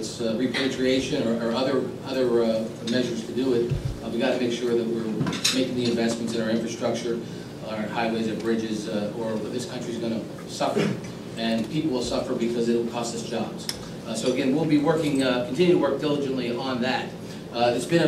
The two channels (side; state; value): both; identical; correlation 1.00